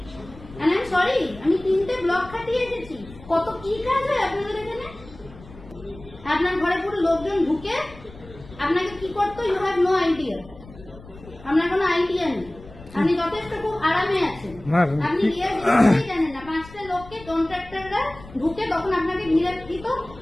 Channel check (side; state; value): left; noise; rumble, 19 dB below the sound